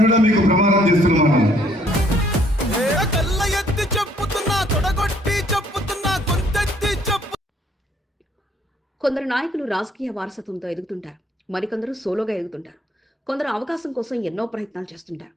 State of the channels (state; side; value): normal; both; correlation 0.64